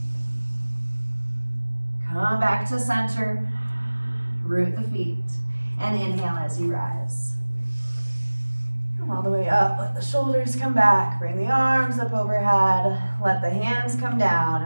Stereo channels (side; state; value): both; inverted; correlation -1.00